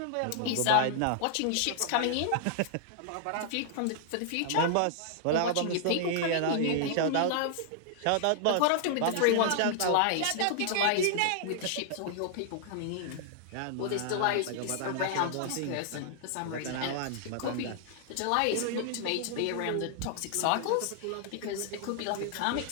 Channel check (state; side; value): different; both; correlation -0.01